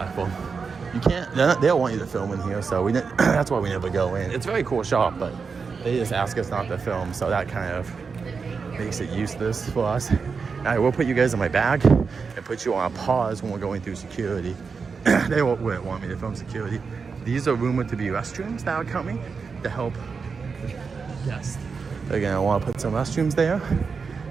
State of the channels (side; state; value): left; quieter; 5.2 dB